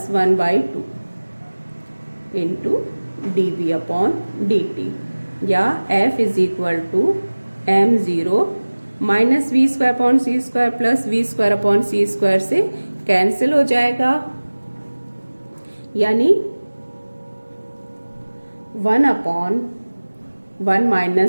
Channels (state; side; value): inverted; both; correlation -1.00